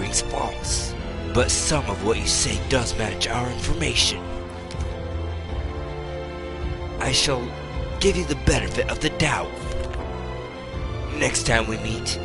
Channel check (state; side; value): identical; both; correlation 1.00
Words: false, but some of what you say does match our information. I shall give you the benefit of the doubt. Next time we meet,